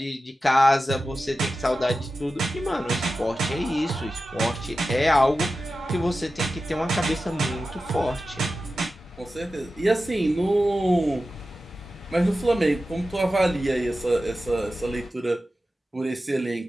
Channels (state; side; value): normal; both; correlation 0.93